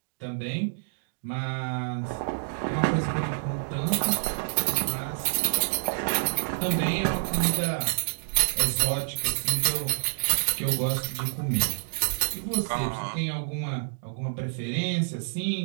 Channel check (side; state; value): left; silent; digital silence